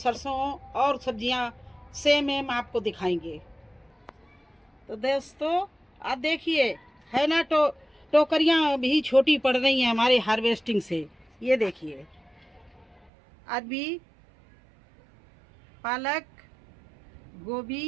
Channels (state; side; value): drops out; left; at 13.1 s